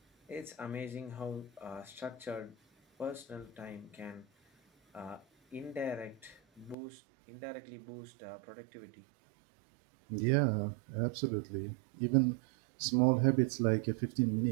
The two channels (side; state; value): left; drops out; at 6.8 s